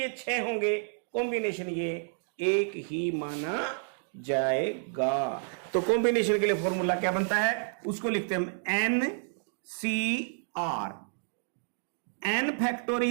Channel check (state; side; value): silent; left; digital silence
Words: 6 होंगे, कॉम्बिनेशन ये एक ही माना जाएगा। तो कॉम्बिनेशन के लिए फॉर्मूला क्या बनता है? उसको लिखते हैं हम NCR, N